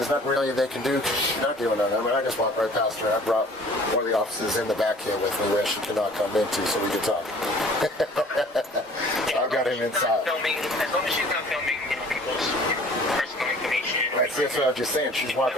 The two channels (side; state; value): both; normal; correlation 0.50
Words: nothing really they can do because she's not doing nothing. I mean, I just walked right past her. I brought one of the officers in the back here with me where she cannot come into so we can talk. I've got him inside. As long as she's not filming people's personal information. Right, see, that's what I was just saying. She's